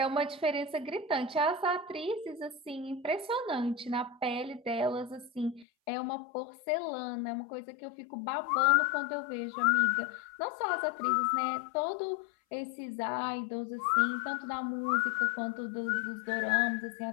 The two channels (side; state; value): right; drops out; at 5.7 s